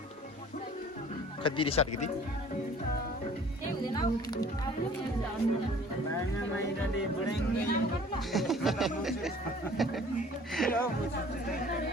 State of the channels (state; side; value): normal; both; correlation 0.51